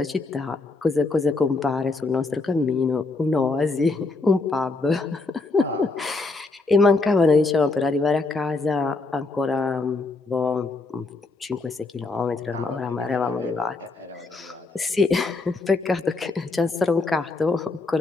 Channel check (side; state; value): right; quieter; 3.6 dB